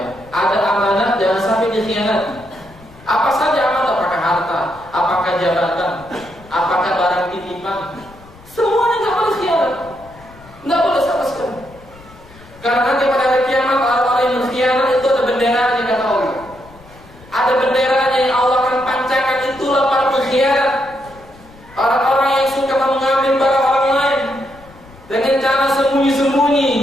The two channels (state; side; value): noise; left; rumble, 23 dB below the sound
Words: Ada amanah jangan sampai dikhianati. Apa saja amanah, apakah harta, apakah jabatan, apakah barang titipan, semuanya nggak boleh khianat, nggak boleh sama sekali. Karena nanti pada hari kiamat orang-orang yang berkhianat itu ada benderanya kata Allah. Ada benderanya yang Allah akan pancakan, itulah para pengkhianat. Orang-orang yang suka mengambil barang orang lain dengan cara